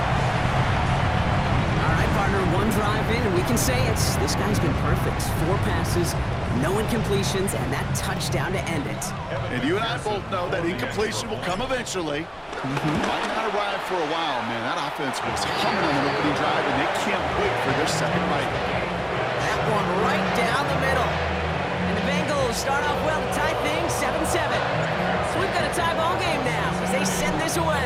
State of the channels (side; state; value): both; identical; correlation 1.00